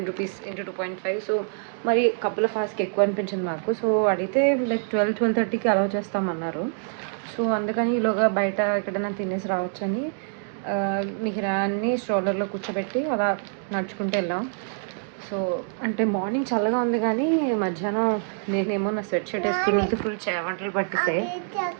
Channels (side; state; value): left; silent; digital silence